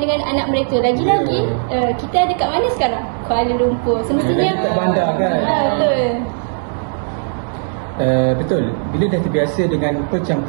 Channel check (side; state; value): left; silent; digital silence